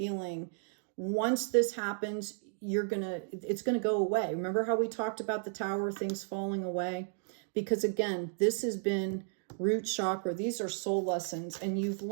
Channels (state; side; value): silent; left; digital silence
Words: once this happens, it's gonna go away. Remember how we talked about the tower, things falling away? Because again, this has been root chakra. These are soul lessons and you've